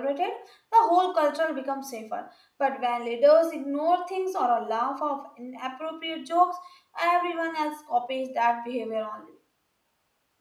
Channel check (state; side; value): identical; both; correlation 1.00